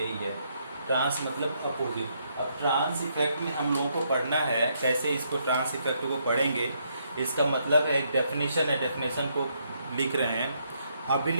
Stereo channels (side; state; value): both; inverted; correlation -0.74